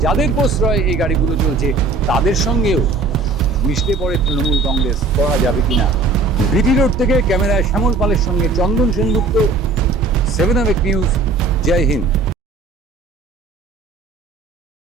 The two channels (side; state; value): left; quieter; 3.8 dB